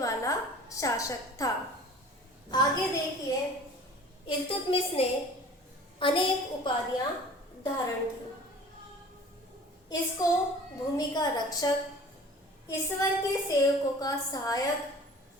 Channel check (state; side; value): normal; both; correlation 0.45